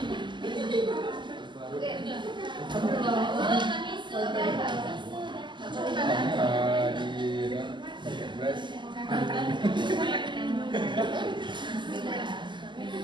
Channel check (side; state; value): left; late; 0.22 ms